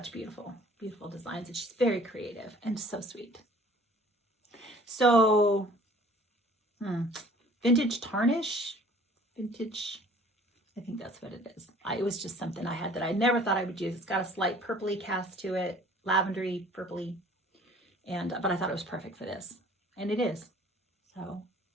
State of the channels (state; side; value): normal; both; correlation 0.52